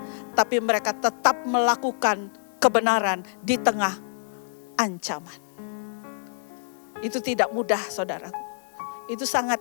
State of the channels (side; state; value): right; silent; digital silence